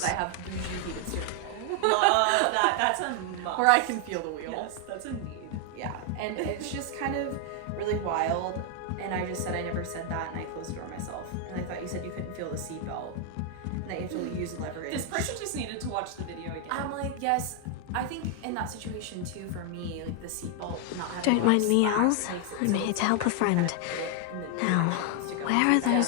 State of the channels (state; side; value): different; both; correlation 0.00